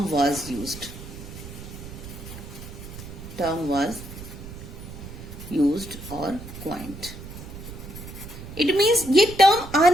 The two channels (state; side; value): noise; right; rumble, 12 dB below the sound